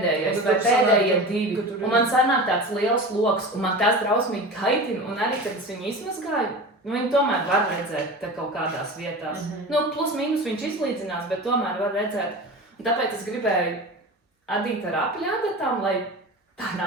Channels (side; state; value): both; normal; correlation 0.31